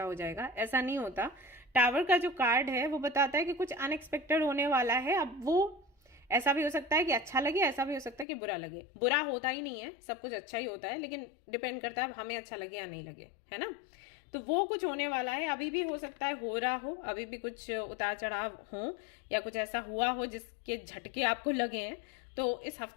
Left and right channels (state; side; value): drops out; right; at 8.2 s